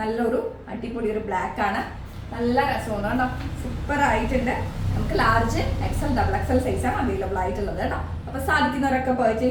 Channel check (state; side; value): identical; both; correlation 1.00